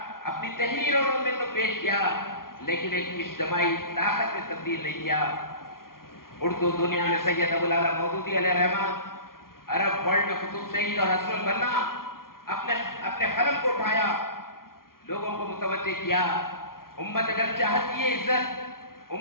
اپنی تحریروں میں تو پیش کیا لیکن ایک اجتماعی طاقت میں تبدیل نہیں کیا۔ اردو دنیا میں سید ابو الاعلیٰ مودودی علیہ الرحمہ عرب ورلڈ میں قطب شہید اور حسن البنا اپنے قلم کو اٹھایا، لوگوں کو متوجہ کیا۔ امت اگر چاہتی ہے عزت،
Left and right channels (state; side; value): late; right; 0.92 ms